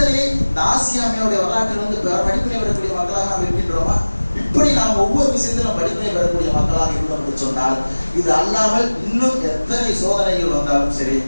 இந்த ஆசியாமையோடைய வரலாற்றில் வந்து படிப்பினை வரக்கூடிய மக்களாக நாம் இருக்கின்றோமா? இப்படி நாம் ஒவ்வொரு விஷயத்திலும் படிப்பினை பெறக்கூடிய மக்களாக இருந்தோம் என்று சொன்னால், இது அல்லாமல் இன்னும் எத்தனை சோதனைகள் வந்தாலும் சரி,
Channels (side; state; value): both; inverted; correlation -1.00